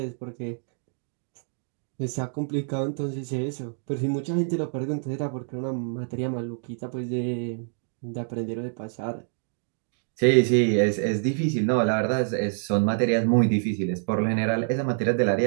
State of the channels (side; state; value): left; silent; digital silence